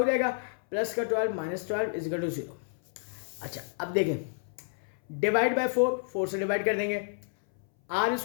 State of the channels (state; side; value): silent; right; 58 dB below the other